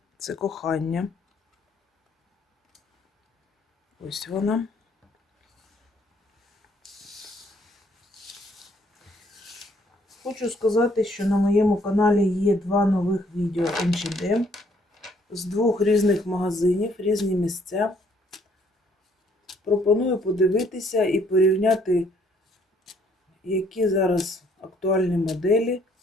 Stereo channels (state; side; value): normal; both; correlation 0.65